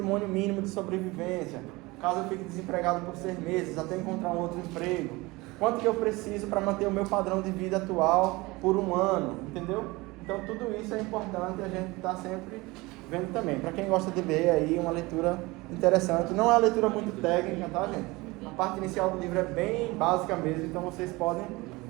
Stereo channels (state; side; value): quieter; left; 22.5 dB